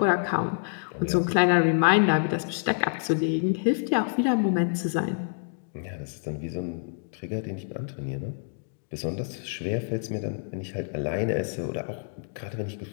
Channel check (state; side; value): silent; right; digital silence